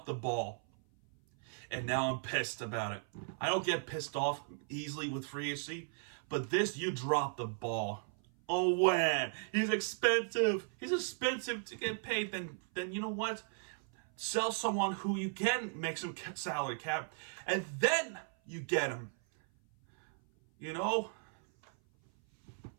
the ball, and now I'm pissed about it. I don't get pissed off easily with free agency, but this, you dropped the ball. Oh, man, he's expensive. He's expensive to get paid. Then you know what? Sell someone who you can make some salary cap, and then you get him. You know?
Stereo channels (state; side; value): silent; left; 54 dB below the other